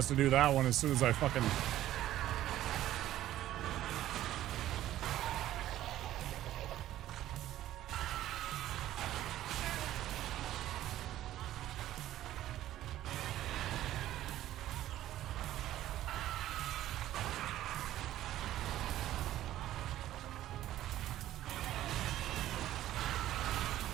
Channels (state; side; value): quieter; left; 13.5 dB